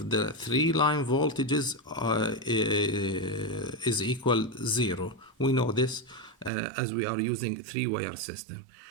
the three line voltages is equal 0. We know this as we are using three-wire system.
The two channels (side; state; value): left; drops out; at 6.5 s